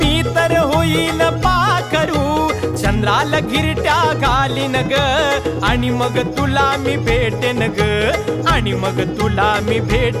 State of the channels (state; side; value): identical; both; correlation 1.00